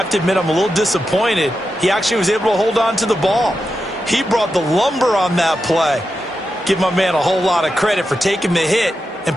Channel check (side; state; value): both; normal; correlation 0.89